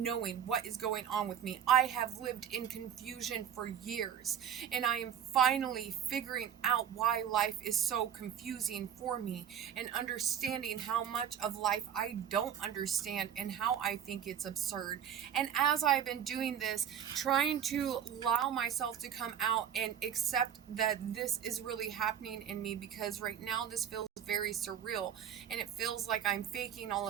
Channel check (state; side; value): quieter; left; 9.0 dB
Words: knowing what is going on with me. I have lived in confusion for years, and I am finally figuring out why life is so confusing for me and understanding how much of life I don't understand and how I think it's absurd. And as I've been doing this, trying to allow myself to come out and accept that this is really happening in me, because right now this feels very surreal and it feels like I'm faking all